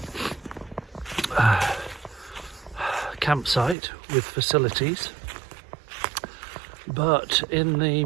campsite with facilities. But in the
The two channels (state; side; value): drops out; left; at 3.8 s